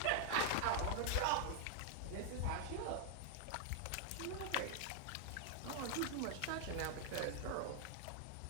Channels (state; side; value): different; both; correlation 0.00